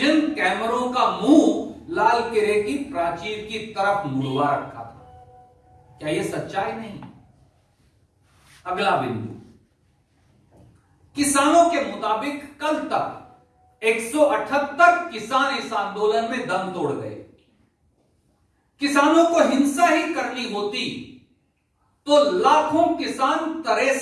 कैमरों का मुंह लाल किले की प्राचीर की तरफ मुड़वा रखा था। क्या यह सच्चाई नहीं। अगला बिंदु, किसानों के मुताबिक कल तक 178 किसान इस आंदोलन में दम तोड़ गए। किसानों को हिंसा ही करनी होती तो लाखों किसान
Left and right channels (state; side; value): identical; both; correlation 1.00